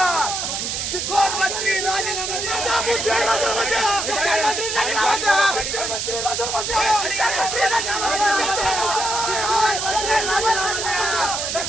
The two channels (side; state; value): right; noise; hiss, 2 dB below the sound